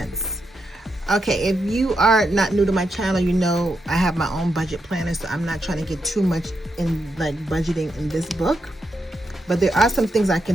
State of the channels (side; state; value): both; normal; correlation 0.84